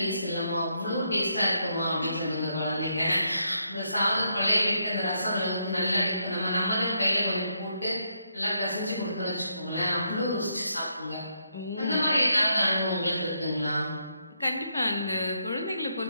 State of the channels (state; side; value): inverted; both; correlation -0.78